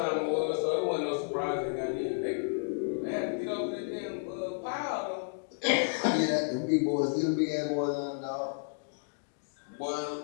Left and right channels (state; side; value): silent; right; digital silence